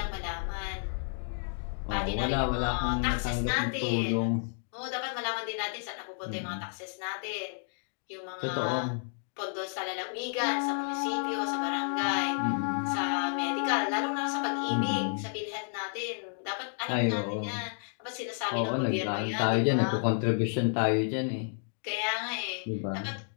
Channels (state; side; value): silent; right; digital silence